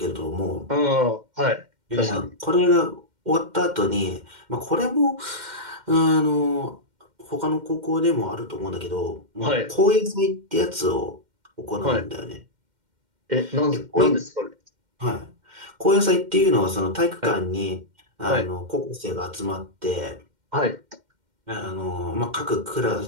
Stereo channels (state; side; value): late; left; 2.1 ms